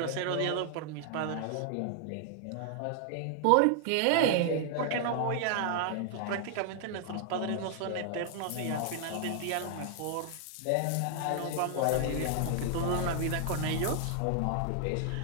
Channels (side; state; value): both; different; correlation 0.00